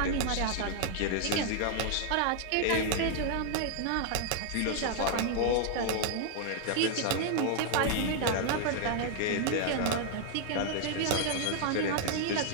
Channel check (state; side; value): different; both; correlation 0.00